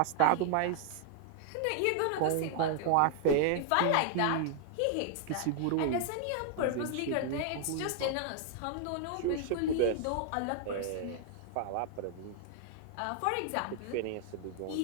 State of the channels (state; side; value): different; both; correlation 0.00